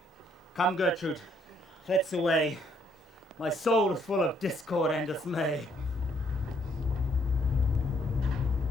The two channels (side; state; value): both; normal; correlation 0.68